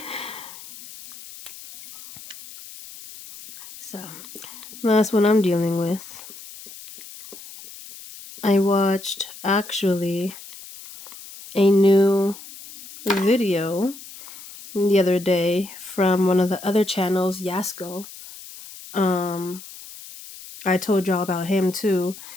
So that's what I'm dealing with. I watched actually a new video the other day from one of the other channels, Yasko. I told y'all about him too.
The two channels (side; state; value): left; noise; hiss, 16 dB below the sound